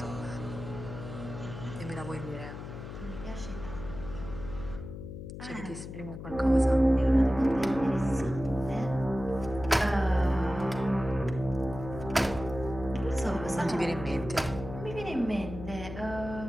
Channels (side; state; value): left; noise; hum, 10 dB below the sound